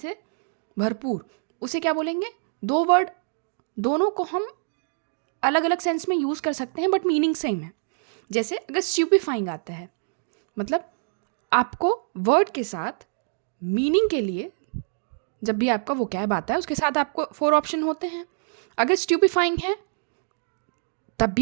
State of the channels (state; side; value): silent; left; digital silence